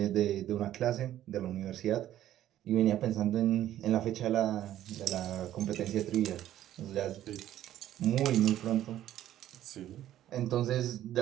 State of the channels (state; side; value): quieter; left; 12.5 dB